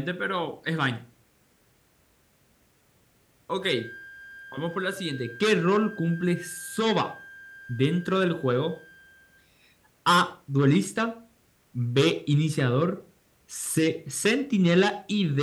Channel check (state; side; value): identical; both; correlation 1.00